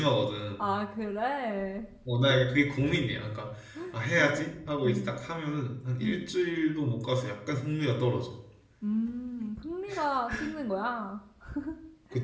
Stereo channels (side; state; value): both; identical; correlation 1.00